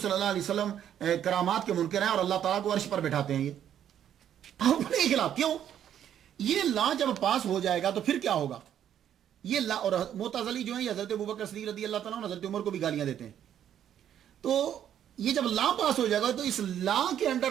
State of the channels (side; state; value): left; quieter; 10.0 dB